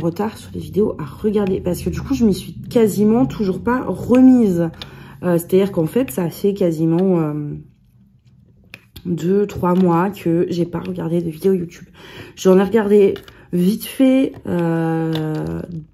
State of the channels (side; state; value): both; identical; correlation 1.00